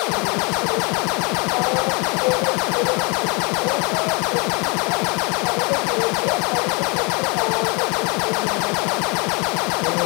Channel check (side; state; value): right; quieter; 30.4 dB